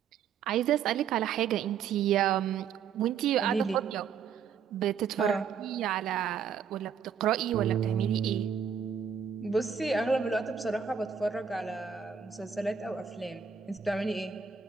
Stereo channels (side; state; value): left; quieter; 7.0 dB